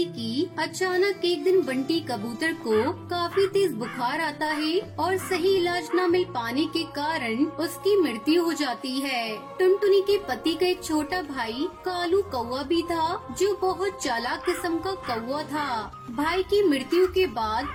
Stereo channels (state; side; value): identical; both; correlation 1.00